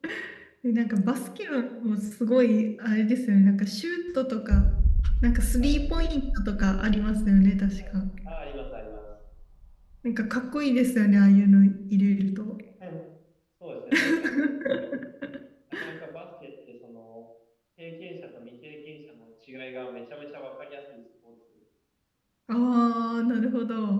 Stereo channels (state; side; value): identical; both; correlation 1.00